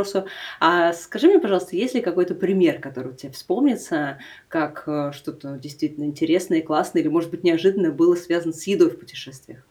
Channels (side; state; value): both; identical; correlation 1.00